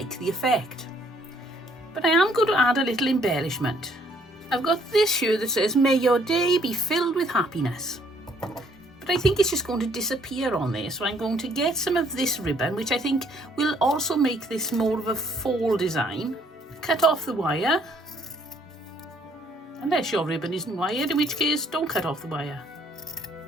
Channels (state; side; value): normal; both; correlation 0.65